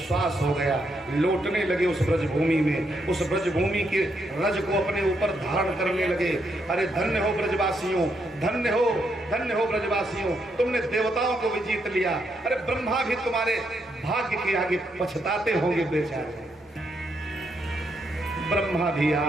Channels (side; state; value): both; normal; correlation 0.78